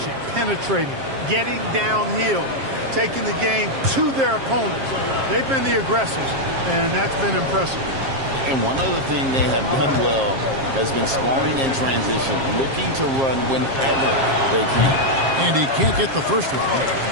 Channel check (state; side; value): late; left; 7.5 ms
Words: penetrating, getting downhill, taking the game to their opponents. They've been the aggressors, and that's been impressive. And one other thing they have done well has been scoring in transition, looking to run whenever they can. And he can't get the first one.